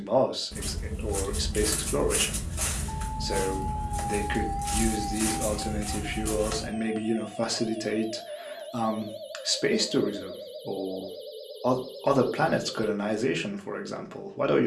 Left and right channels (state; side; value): identical; both; correlation 1.00